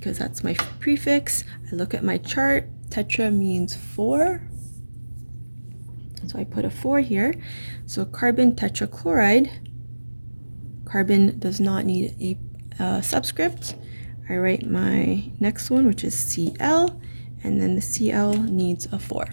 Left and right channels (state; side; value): inverted; both; correlation -1.00